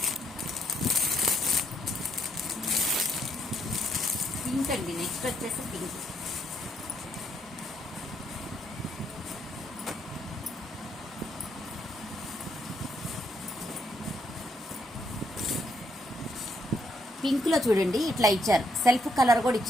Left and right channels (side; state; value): both; normal; correlation 0.74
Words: పింక్ అండి. నెక్స్ట్ వచ్చేసి పింక్. పింక్లో చూడండి ఇట్లా ఇచ్చారు, సెల్ఫ్ కలర్ కూడా